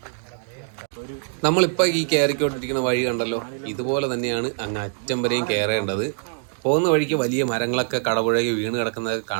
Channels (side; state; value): left; silent; digital silence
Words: നമ്മളിപ്പോൾ ഈ കയറിക്കൊണ്ടിരിക്കുന്ന വഴി കണ്ടല്ലോ, ഇതുപോലെ തന്നെയാണ് അങ്ങ് അറ്റം വരെയും കയറേണ്ടത്. പോകുന്ന വഴിക്ക് വലിയ മരങ്ങളൊക്കെ കടപുഴകി വീണ് കിടക്കുന്നതൊക്കെ